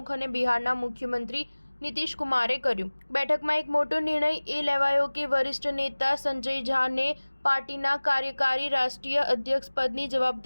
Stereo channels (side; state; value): both; inverted; correlation -1.00